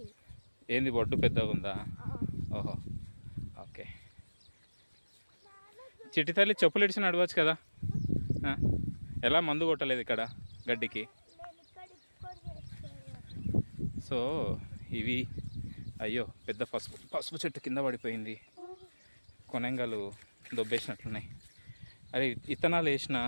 ఏంది బొడ్డు పెద్దగా ఉందా? ఓహో, ఓకే. చిట్టి తల్లి చెప్పులు ఇడిచి నడవచ్చు కదా. ఎలా మందు కొట్టలేదు ఇక్కడ గడ్డికి? సో ఇవి అయ్యో పెద్ద పసుపు చెట్టు కింద పడిపోయింది. కొనంగలు దొబ్బేసినట్లున్నాయి. అరే ఇత్తనాలు వేసిన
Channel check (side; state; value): both; inverted; correlation -1.00